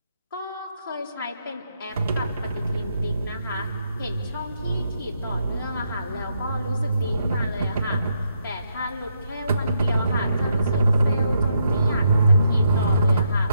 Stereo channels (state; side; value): inverted; both; correlation -0.78